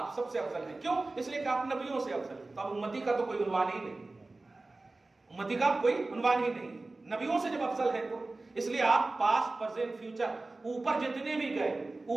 سب سے افضل ہیں. کیوں؟ اس لیے کہ آپ نبیوں سے افضل ہیں. تو اب امتی کا تو کوئی عنوان ہی نہیں، امتی کا کوئی عنوان ہی نہیں. نبیوں سے جب افضل ہے تو اس لیے آپ پاسٹ پرزینٹ فیوچر اوپر جتنے بھی گئے،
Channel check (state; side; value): quieter; left; 3.2 dB